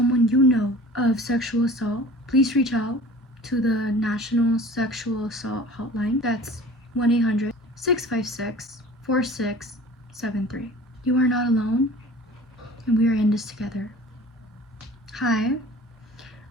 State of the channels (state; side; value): normal; both; correlation 0.43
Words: you know of sexual assault, please reach out to the National Sexual Assault Hotline. That's 1-800-656-4673. You are not alone, and we are in this together. Hi,